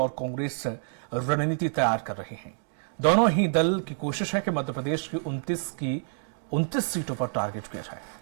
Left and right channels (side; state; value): left; silent; digital silence